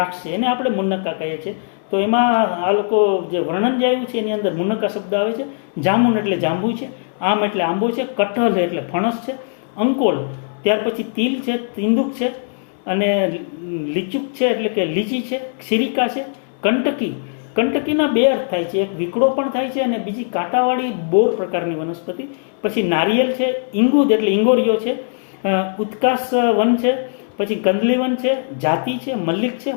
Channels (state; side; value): silent; right; 66 dB below the other